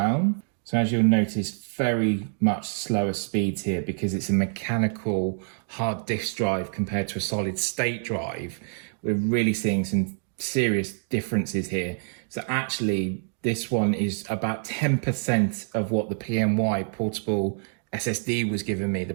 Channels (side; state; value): left; silent; 61 dB below the other